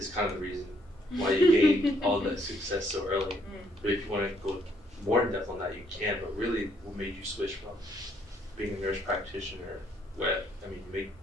kind of the reason why you gained all that success so early. But if you want to go more in depth on that, you can. But really, what made you switch from being a nurse practitioner, where you make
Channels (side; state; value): both; normal; correlation 0.69